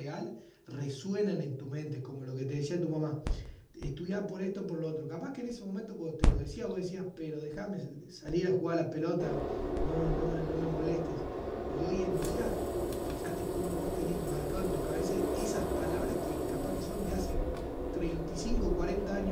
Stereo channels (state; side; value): identical; both; correlation 1.00